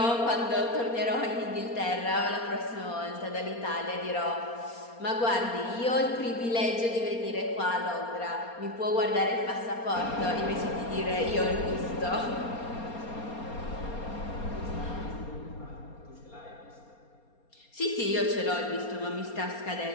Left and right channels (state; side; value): late; right; 4.3 ms